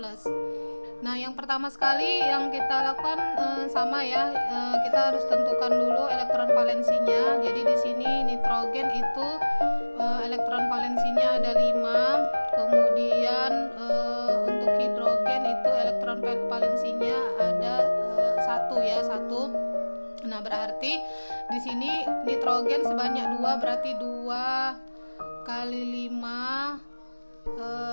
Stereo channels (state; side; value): inverted; both; correlation -1.00